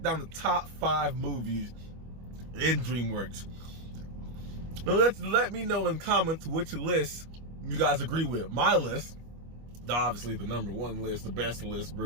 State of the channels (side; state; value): left; late; 25 ms